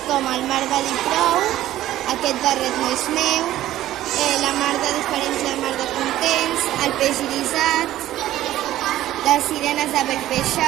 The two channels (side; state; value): left; quieter; 14.0 dB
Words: com El mar va dir prou, Aquest barret no és meu, La mar de diferents, la mar de contents, El peix irisat, Les sirenes de